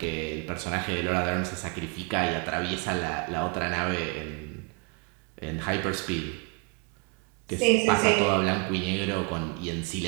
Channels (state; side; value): quieter; left; 32.7 dB